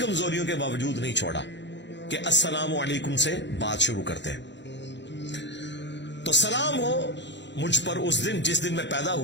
کے باوجود نہیں چھوڑا کہ السلام علیکم سے بات شروع کرتے ہیں. تو سلام ہو مجھ پر اس دن جس دن میں پیدا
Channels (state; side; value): late; right; 0.52 ms